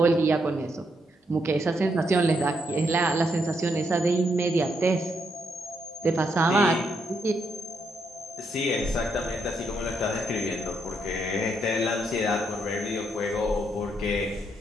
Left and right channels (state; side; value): normal; both; correlation 0.77